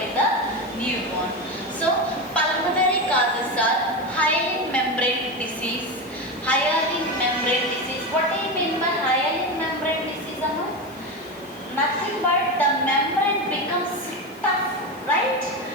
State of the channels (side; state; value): left; noise; hiss, 24 dB below the sound